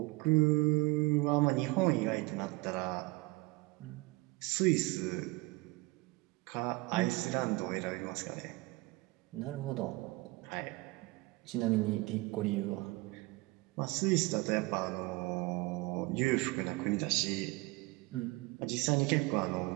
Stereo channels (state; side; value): quieter; left; 23.1 dB